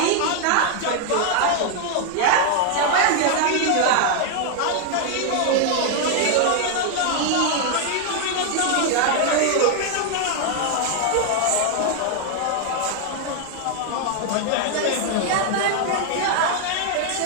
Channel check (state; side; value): different; both; correlation 0.00